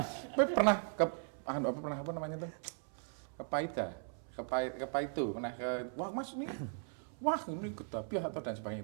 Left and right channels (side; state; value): left; silent; 52 dB below the other